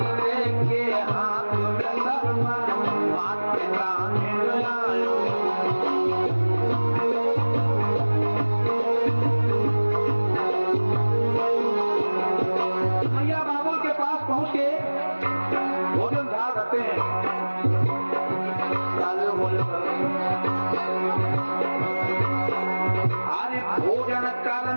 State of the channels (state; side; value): inverted; both; correlation -1.00